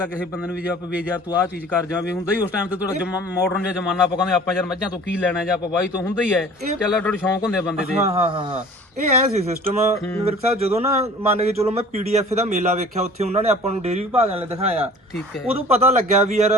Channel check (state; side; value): normal; both; correlation 0.46